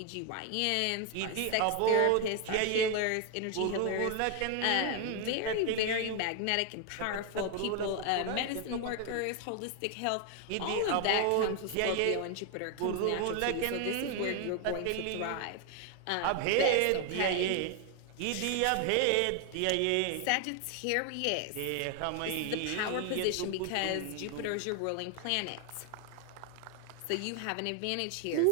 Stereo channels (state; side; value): different; both; correlation 0.00